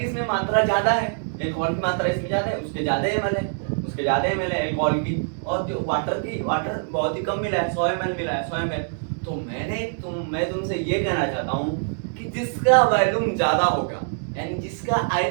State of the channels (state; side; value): silent; left; digital silence